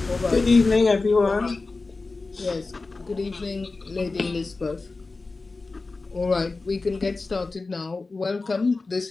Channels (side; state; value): right; quieter; 3.7 dB